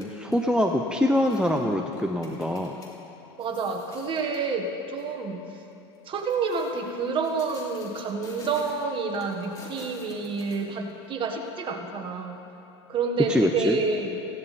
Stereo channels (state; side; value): normal; both; correlation 0.54